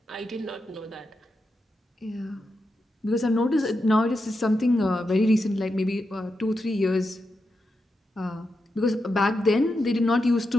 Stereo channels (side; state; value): both; normal; correlation 0.87